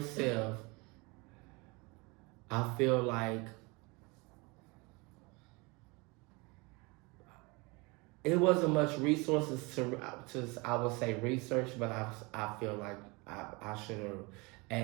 self, I feel like it wasn't much resources to I would say research, but I feel like I should have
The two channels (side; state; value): left; quieter; 26.8 dB